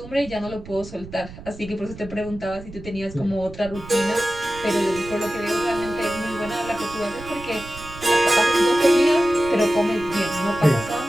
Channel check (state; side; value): noise; right; rumble, 15 dB below the sound